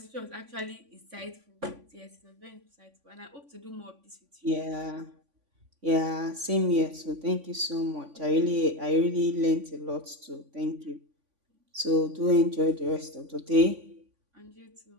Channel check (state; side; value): late; left; 3.5 ms